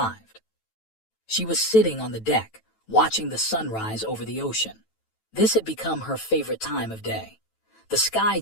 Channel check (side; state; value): right; late; 9.1 ms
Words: She was sitting on the deck, watching the sunrise over the ocean. This had become her favorite time of day. The sky